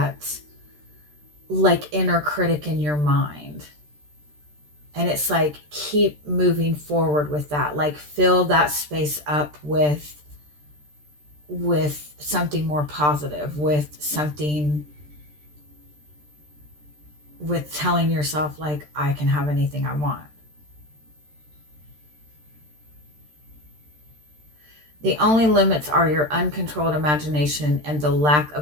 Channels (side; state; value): left; late; 13 ms